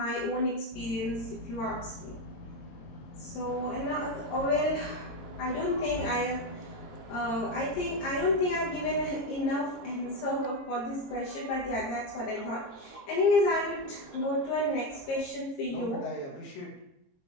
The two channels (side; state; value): right; late; 22 ms